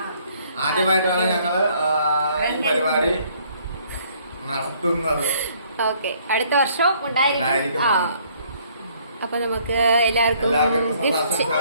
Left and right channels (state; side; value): inverted; both; correlation -0.62